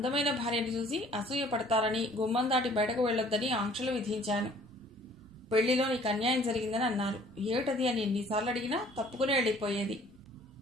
భార్యను చూసి అసూయ పడతారని గుమ్మం దాటి బయటకు వెళ్లొద్దని ఆంక్షలు విధించాను. పెళ్లిలో నీకు అన్యాయం జరిగిందని అన్నారు. ఏమిటది అని ఎన్నిసార్లు అడిగినా తప్పుకుని వెళ్ళిపోయేది.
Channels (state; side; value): noise; right; rumble, 26 dB below the sound